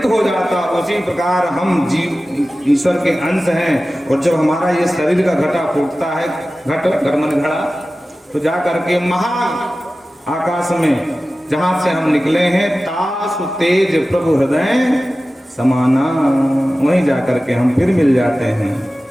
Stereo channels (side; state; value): both; normal; correlation 0.96